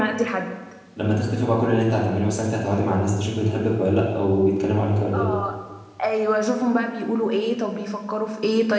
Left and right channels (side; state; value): both; identical; correlation 1.00